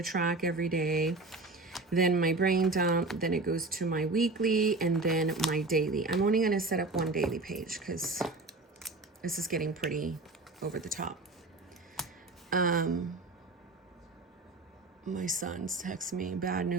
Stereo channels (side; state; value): left; quieter; 3.2 dB